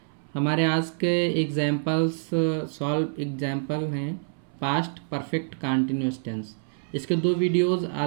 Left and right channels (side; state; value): left; silent; 61 dB below the other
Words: हमारे आज के एग्जाम्पल्स सॉल्व एग्जाम्पल हैं पास्ट परफेक्ट कंटिन्यूअस टेंस। इसके 2 वीडियोस